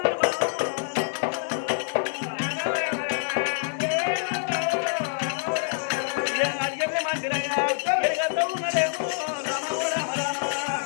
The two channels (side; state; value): right; silent; digital silence